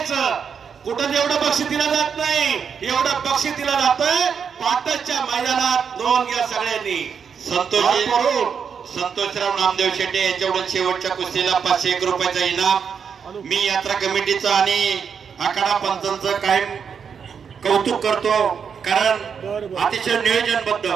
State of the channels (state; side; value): quieter; left; 6.8 dB